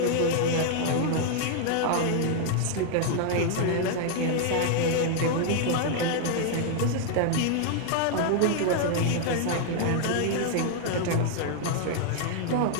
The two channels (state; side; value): different; both; correlation 0.00